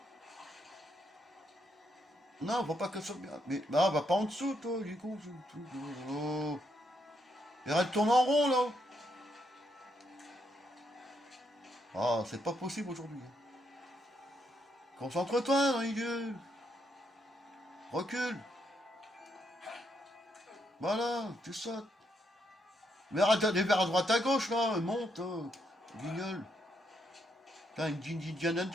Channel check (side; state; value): both; normal; correlation 0.77